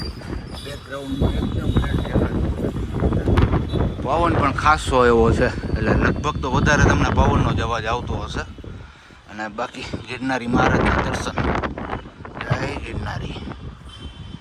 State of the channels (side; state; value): both; identical; correlation 1.00